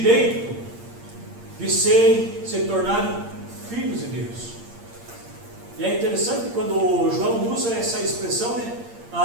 de se tornarem filhos de Deus. E é interessante quando o João usa essa expressão, né?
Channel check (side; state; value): left; late; 8.6 ms